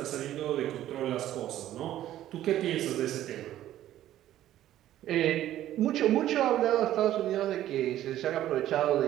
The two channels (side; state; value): left; quieter; 12.9 dB